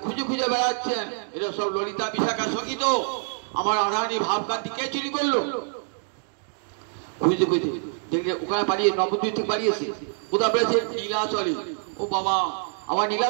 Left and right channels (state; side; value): silent; left; digital silence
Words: খুঁজে খুঁজে বেড়াচ্ছেন, এরা সব ললিতা বিশাখা সখী তো। আমার রাধারানী ভাবকান্তি কে চুরি করলো? খুঁজতে খুঁজতে দেখলে ওখানে পালিয়ে, নবদ্বীপ থেকে পালিয়েছে। কোথায় পেয়েছে? নীলাচলে। ও বাবা, আবার